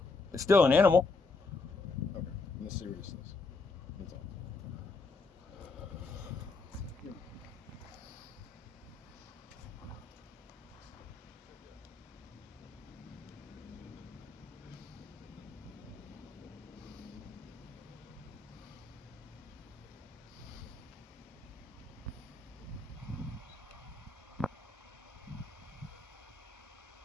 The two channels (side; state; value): right; quieter; 4.0 dB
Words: It's still an animal. Okay, in the seriousness. That's all.